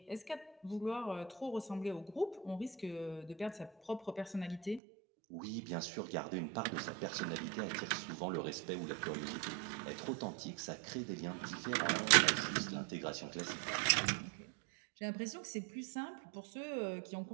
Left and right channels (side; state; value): left; drops out; at 4.8 s